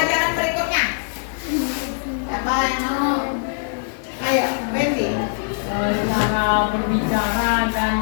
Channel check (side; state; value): right; silent; digital silence